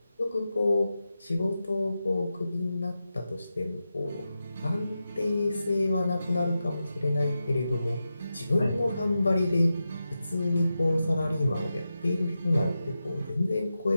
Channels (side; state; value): both; inverted; correlation -0.91